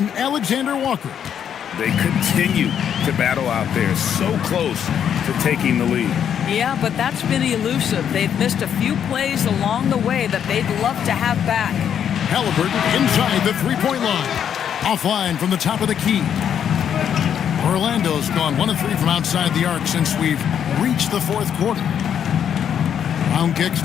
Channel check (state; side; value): quieter; right; 8.7 dB